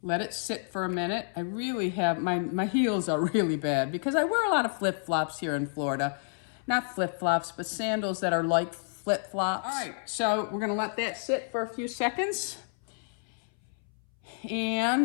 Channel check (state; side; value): silent; right; 58 dB below the other